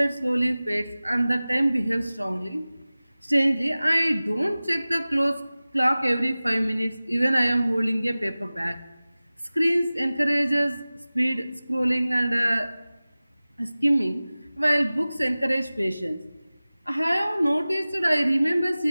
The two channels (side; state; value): both; inverted; correlation -0.98